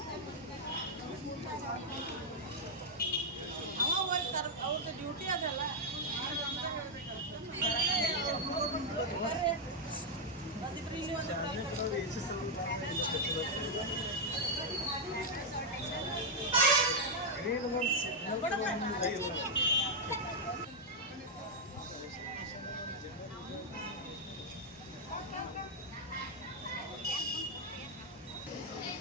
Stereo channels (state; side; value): normal; both; correlation -0.02